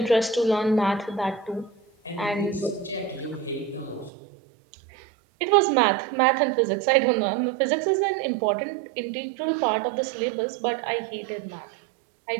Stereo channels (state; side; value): drops out; left; at 4.1 s